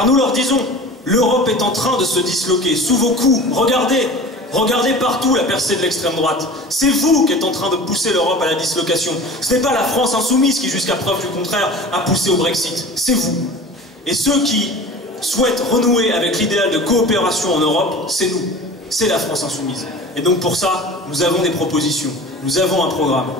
nous leur disons, l'Europe est en train de se disloquer sous vos coups, regardez partout la percée de l'extrême droite, c'est vous qui êtes en train de pousser l'Europe à la dislocation, ce n'est pas la France insoumise qui, jusqu'à preuve du contraire, a poussé au Brexit, c'est vous. Et ceux qui souhaitent renouer avec l'idéal de coopération en Europe, c'est nous. c'est la France insoumise. Et donc pour ça, nous avons des propositions, nous avons un programme.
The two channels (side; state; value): both; normal; correlation 0.38